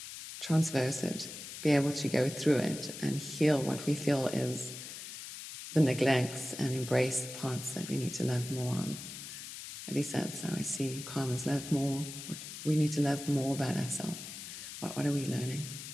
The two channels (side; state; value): left; noise; hiss, 10 dB below the sound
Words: transverse it, be able to go through it and heal what we feel is the neglects and embrace the parts that we need to love more of. At least that's how I see karmas. Love more. We need to love more about ourselves. What are we learning?